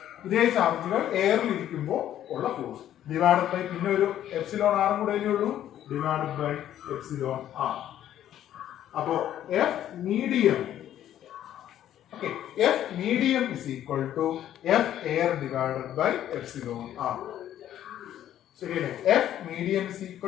ഇതേ ചാർജുകൾ എയറിൽ ഇരിക്കുമ്പോൾ ഉള്ള ഫോഴ്സ് ഡിവൈഡഡ് ബൈ പിന്നെ ഒരു എപ്സിലോൺ ആറും കൂടെ ഉള്ളൂ, ഡിവൈഡഡ് ബൈ എപ്സിലോൺ ആർ. അപ്പോ F medium, okay, F medium is equal to F air divided by epsilon R. ശരിയല്ലേ? F medium is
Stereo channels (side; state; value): right; quieter; 11.5 dB